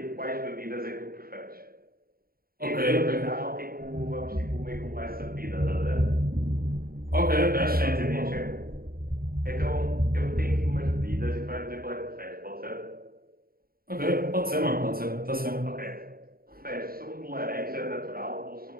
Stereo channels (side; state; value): left; late; 0.43 ms